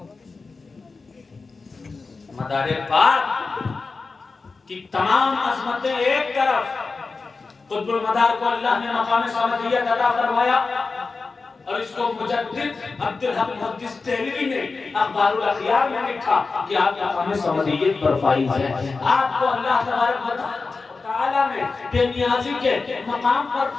مدار پاک کی تمام عظمتیں ایک طرف, قطب المدار کو اللہ نے مقام سمدیت عطا فرمایا, اور اس کو مجدد عبدالحق محدث دہلوی نے اخبار الاخیار میں لکھا کہ آپ مقام سمدیت پر فائز ہیں. آپ کو اللہ تبارک و تعالیٰ نے بے نیازی کے مقام پر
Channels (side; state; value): right; quieter; 4.2 dB